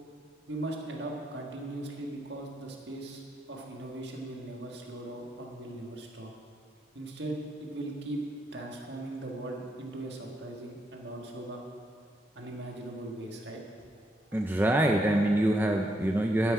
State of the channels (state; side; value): normal; both; correlation 0.78